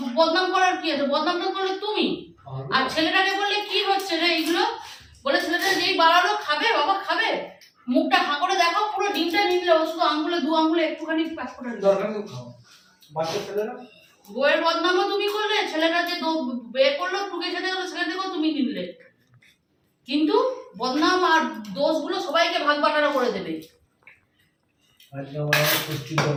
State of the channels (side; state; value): both; identical; correlation 1.00